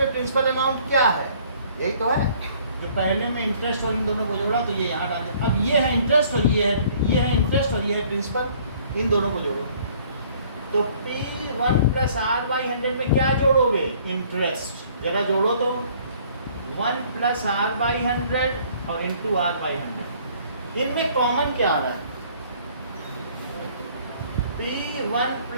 प्रिंसिपल अमाउंट क्या है, यही तो है, जो पहले में इंटरेस्ट और इन दोनों को जोड़ा तो ये यहाँ डाल दें। अब ये है इंटरेस्ट और ये है इंटरेस्ट और ये है प्रिंसिपल, इन दोनों को जोड़ो, तो P1 + R/100 में क्या जोड़ोगे, इंटरेस्ट, जरा जोड़ो तो 1 + R/100 और इंटू R/100, इनमें कॉमन क्या आ रहा है, P1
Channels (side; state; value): both; inverted; correlation -0.58